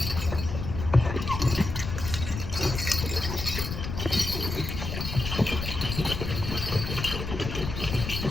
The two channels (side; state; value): left; noise; rumble, 5 dB below the sound